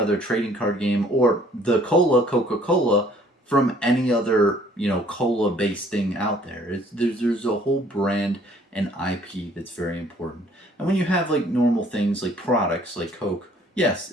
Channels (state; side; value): normal; both; correlation 0.58